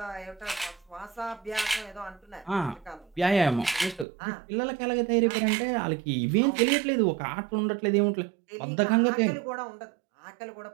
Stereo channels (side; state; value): left; drops out; at 4.0 s